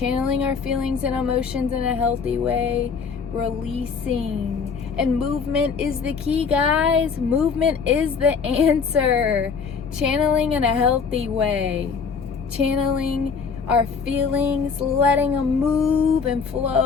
our feelings and emotions in a healthy way, releasing. And movement is the key, guys. Movement is the answer. Channeling in a healthy way. Channeling our feelings, letting them move and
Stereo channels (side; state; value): right; quieter; 5.7 dB